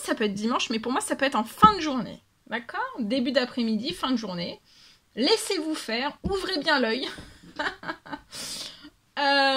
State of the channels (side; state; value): both; identical; correlation 1.00